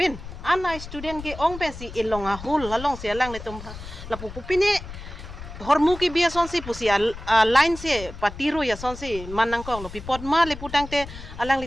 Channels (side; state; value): left; noise; rumble, 12 dB below the sound